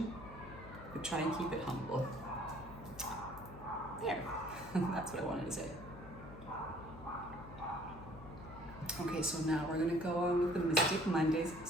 but try and keep it humble. There. That's what I wanted to say. Okay, so now we're gonna go on with the Mystic Mondays.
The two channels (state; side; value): noise; left; hum, 15 dB below the sound